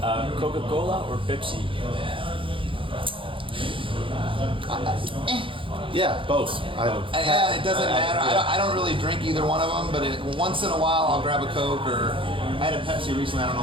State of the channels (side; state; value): left; late; 0.25 ms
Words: Coca-Cola or Pepsi? Yeah, both. It doesn't matter. I don't really drink either one of them, but once in a while I'll grab a Coke, or I had a Pepsi recently. I don't